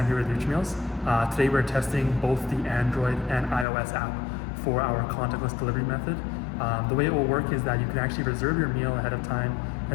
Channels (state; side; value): drops out; right; at 3.7 s